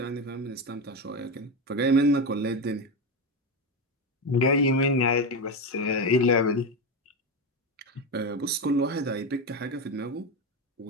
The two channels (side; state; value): both; normal; correlation 0.15